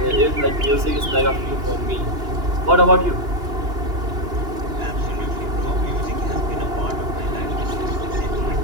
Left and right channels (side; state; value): left; late; 2.9 ms